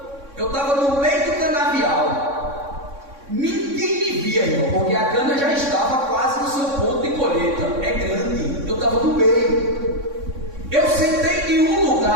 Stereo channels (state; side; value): late; left; 3.6 ms